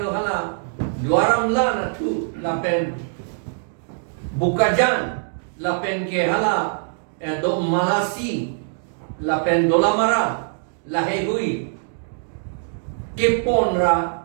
lo hala duaram la na tu la pen bukajan la pen ke hala do malasi la pen dolamara la hehui ke pon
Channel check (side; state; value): left; silent; digital silence